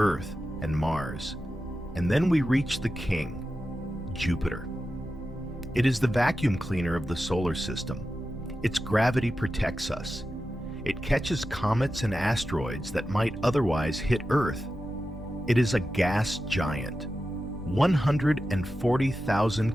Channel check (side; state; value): both; normal; correlation 0.91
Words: and Mars, and then we reach the king, Jupiter. It is the vacuum cleaner of the solar system. Its gravity protects us. It catches comets and asteroids that might otherwise hit Earth. It is a gas giant,